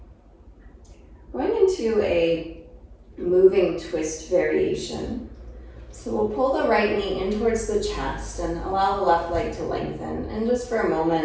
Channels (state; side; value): identical; both; correlation 1.00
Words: Going into a moving twist variation. So we'll pull the right knee in towards the chest and allow the left leg to lengthen. And just for a